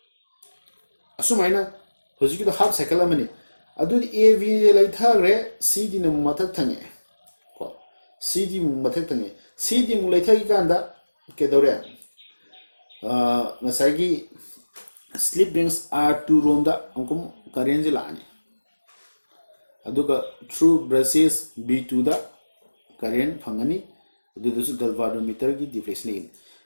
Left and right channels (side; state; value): both; inverted; correlation -1.00